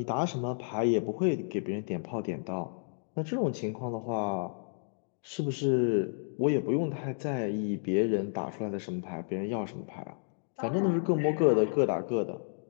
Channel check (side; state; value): right; silent; digital silence